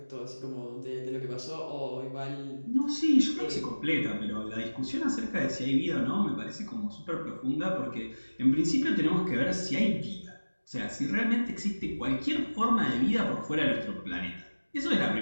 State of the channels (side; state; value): both; inverted; correlation -1.00